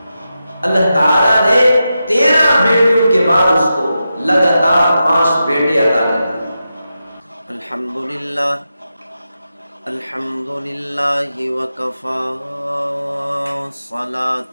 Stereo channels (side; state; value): both; inverted; correlation -0.89